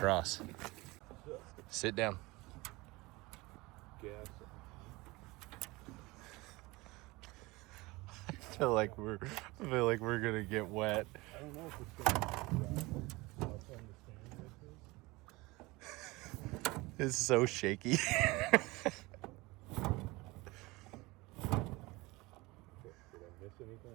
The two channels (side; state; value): left; quieter; 22.5 dB